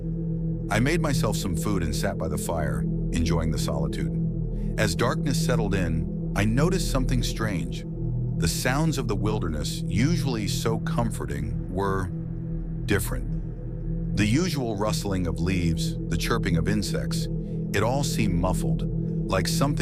I made myself some food and sat by the fire, enjoying the solitude. As darkness settled in, I noticed something strange. The sounds of the wilderness, usually so comforting, were different. The usual rustling of leaves, the chirping of insects, it all seemed muffled, like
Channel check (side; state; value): both; identical; correlation 1.00